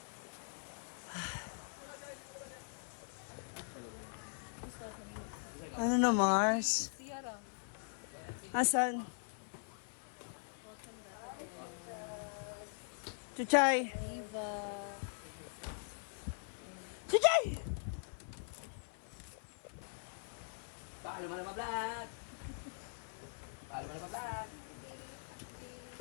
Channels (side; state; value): right; silent; 50 dB below the other